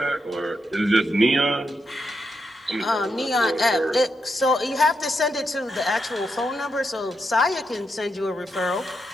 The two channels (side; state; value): both; normal; correlation 0.83